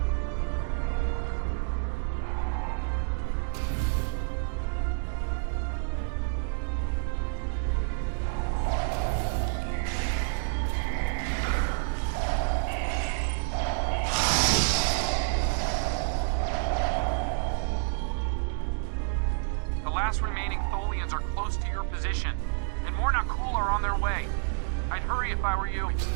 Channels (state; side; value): silent; left; digital silence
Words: The last remaining Tholians are close to your position, and more Nakul are on their way. I'd hurry if I were you. We've